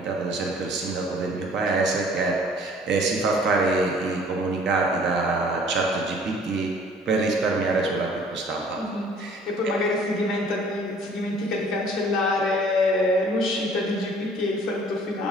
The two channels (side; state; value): both; normal; correlation 0.54